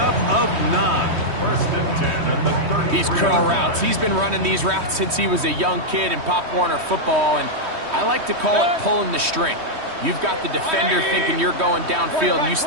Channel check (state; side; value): late; left; 3.1 ms